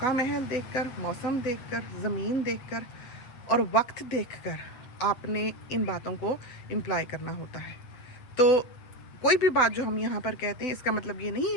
महल देखकर, मौसम देखकर, ज़मीन देखकर और वक्त देखकर आपने इन बातों को इम्प्लाई करना होता है। तो कोई भी बात जो हम यहाँ पर कहते हैं, इसका मतलब ये नहीं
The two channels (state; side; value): late; right; 7.8 ms